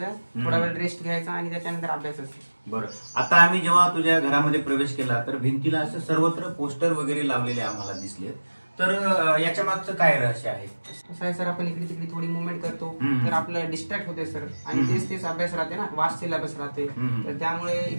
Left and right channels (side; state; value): both; inverted; correlation -1.00